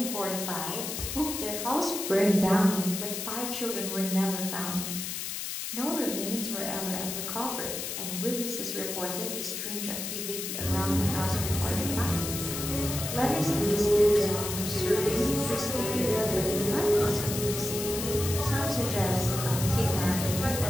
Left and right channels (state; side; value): noise; left; hiss, 5 dB below the sound